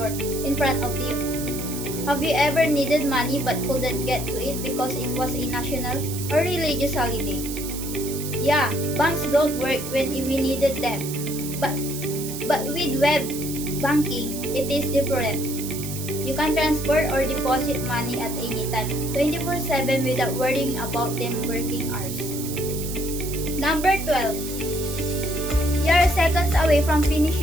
in front of you? Have you ever needed money but couldn't get to it because it was a national or religious holiday? Yeah, banks don't work when we needed them. But with web banking, it is different. You can transfer or deposit money at any time, 24/7 without worrying about them working hours. Number 12. You are seconds away from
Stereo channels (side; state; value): right; noise; hiss, 9 dB below the sound